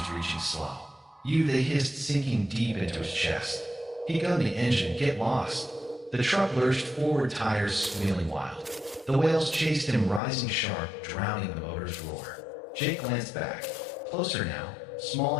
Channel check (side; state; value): right; drops out; at 10.2 s